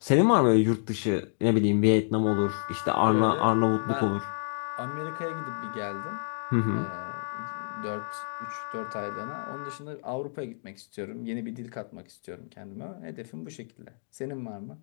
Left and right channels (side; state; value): right; silent; digital silence